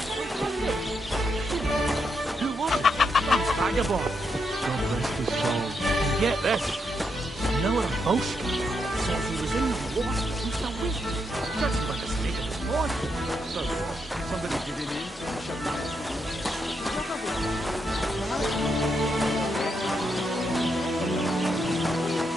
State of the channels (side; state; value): both; normal; correlation 0.80